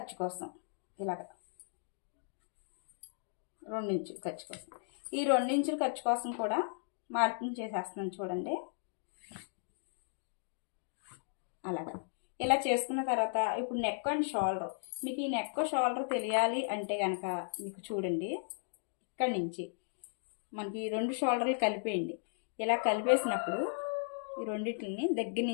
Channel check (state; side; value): silent; right; digital silence